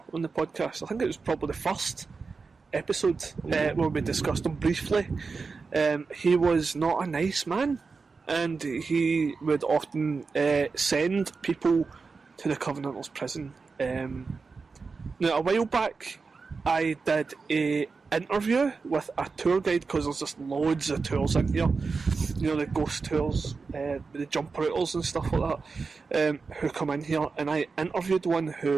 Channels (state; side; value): quieter; left; 4.6 dB